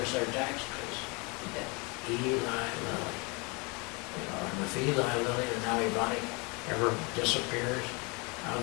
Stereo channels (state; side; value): quieter; right; 29.6 dB